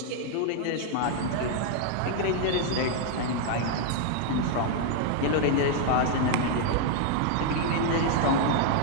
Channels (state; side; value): different; both; correlation 0.00